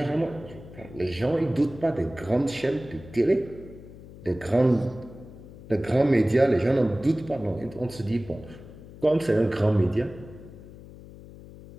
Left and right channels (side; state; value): left; noise; hum, 17 dB below the sound